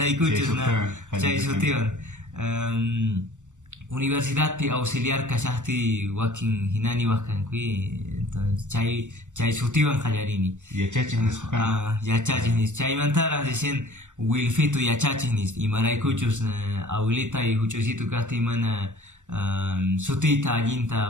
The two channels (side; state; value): left; late; 0.85 ms